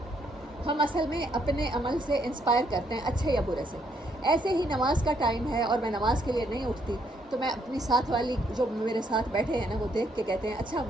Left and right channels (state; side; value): normal; both; correlation 0.71